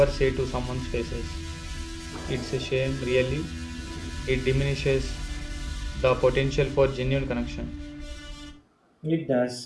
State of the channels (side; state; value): both; identical; correlation 1.00